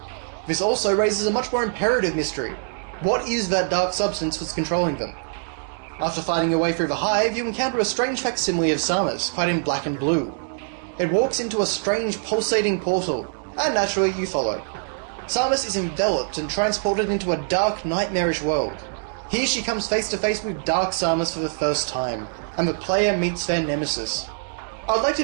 This also raises a much more imperative mystery. What is that dark substance that's controlling them? After fighting your way through the hive, you encounter a strange facsimile of Samus, clad in black and blue. It walks into a strange pulsating portal, and naturally you follow. Samus is enveloped and transported into a dark, nightmarish world. Here she comes face to face with Dark Samus for the first time, and the player meets their nemesis. I would like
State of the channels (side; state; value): left; silent; 63 dB below the other